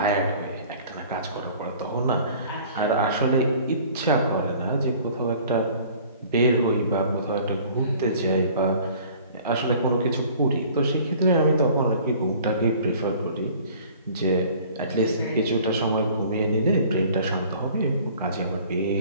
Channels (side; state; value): both; inverted; correlation -0.50